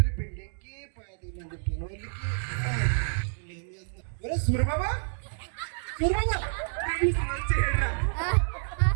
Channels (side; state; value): left; silent; 59 dB below the other